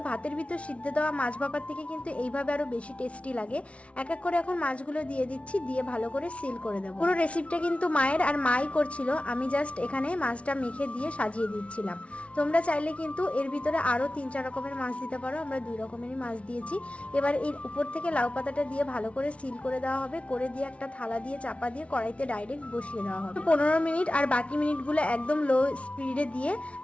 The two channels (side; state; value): right; late; 0.062 ms